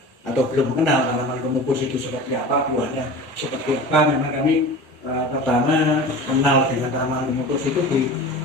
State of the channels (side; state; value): both; normal; correlation 0.35